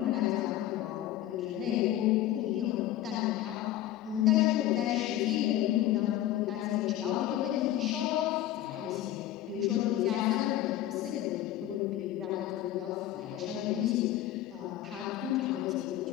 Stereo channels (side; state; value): right; quieter; 13.3 dB